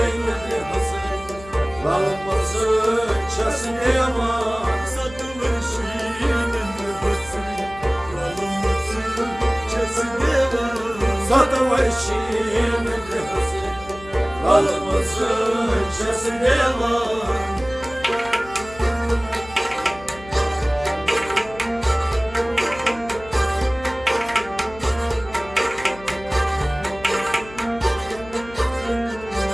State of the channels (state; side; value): noise; left; hum, 18 dB below the sound